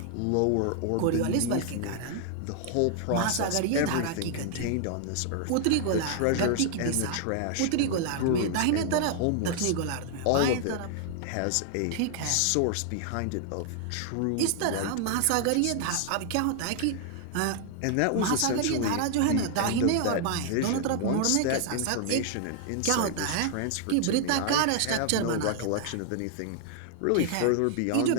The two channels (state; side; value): different; both; correlation 0.00